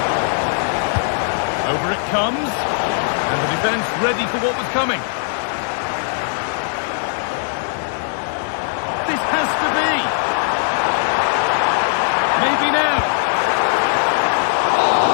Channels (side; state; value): right; silent; 60 dB below the other